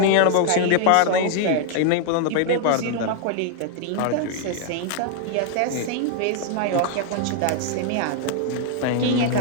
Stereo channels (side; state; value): both; different; correlation 0.00